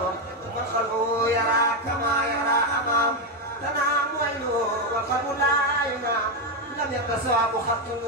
man xalu yara kama yara amam tanaa mooy loo wal xalu laay naam لم يتصاب خط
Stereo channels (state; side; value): normal; both; correlation 0.06